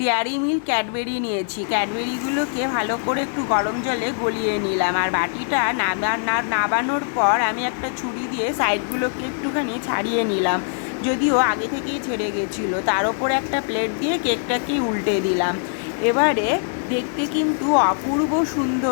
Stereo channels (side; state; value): right; silent; digital silence